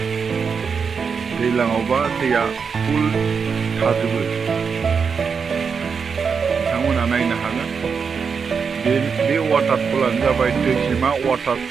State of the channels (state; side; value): quieter; left; 5.9 dB